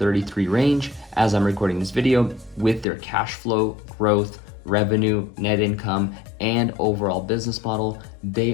range, as I'm recording this video, with their cash flow, growth, revenue, net income, and overall business model, they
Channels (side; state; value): right; drops out; at 2.9 s